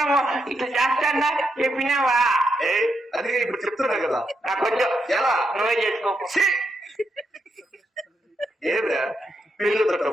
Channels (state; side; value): normal; both; correlation 0.82